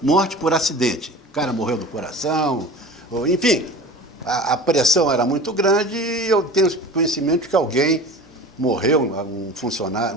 morte por acidente. O cara morreu do coração, enfim, a pressão era muito grande e eu tenho conhecimento de que alguém morreu, um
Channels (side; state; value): both; normal; correlation 0.37